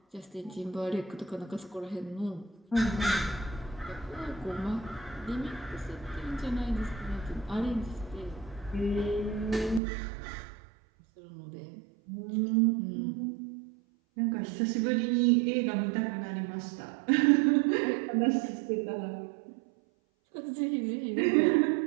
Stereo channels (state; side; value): drops out; left; at 9.8 s